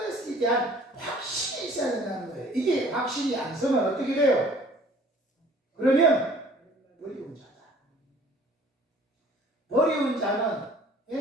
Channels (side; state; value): both; normal; correlation 0.53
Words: 대한 확신이 있어야 된다는 거예요. 이게 확신이 안 서면 어떻게 돼요? 그러면 버리운 자다. 버리운 자는